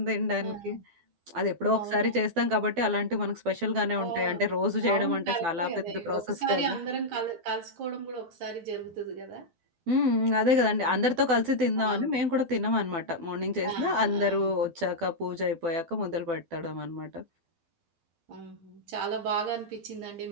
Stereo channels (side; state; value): left; late; 12 ms